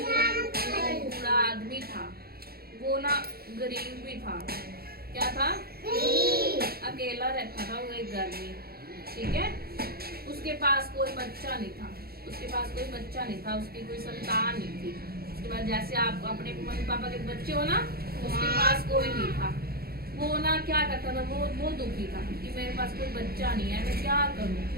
अंकल। बूढ़ा आदमी था, वो ना गरीब भी था। क्या था? गरीब। अकेला रहता था वो एक घर में, ठीक है? उसके पास कोई बच्चा नहीं था, उसके पास कोई बच्चा नहीं था, उसकी कोई संतान नहीं थी। उसके बाद जैसे आप अपने मम्मी पापा के बच्चे हो ना, उसके पास कोई नहीं था। वो ना क्या करता था, वो दुखी था कि मेरे पास कोई बच्चा नहीं है, मैं क्या करूं,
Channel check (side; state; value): left; late; 0.45 ms